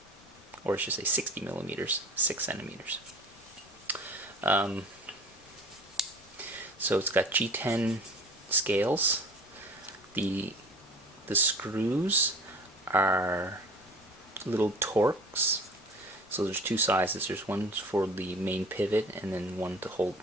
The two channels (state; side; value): noise; left; rumble, 28 dB below the sound